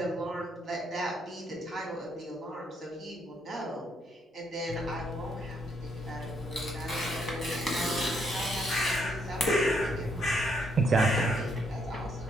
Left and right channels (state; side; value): normal; both; correlation 0.72